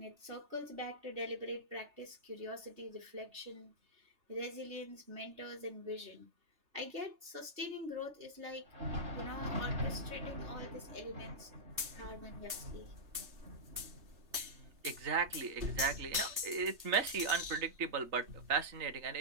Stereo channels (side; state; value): left; late; 3.3 ms